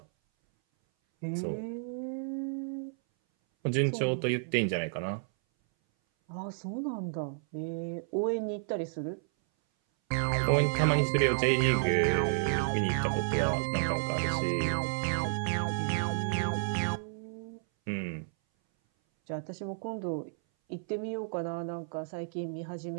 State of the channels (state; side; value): silent; left; 57 dB below the other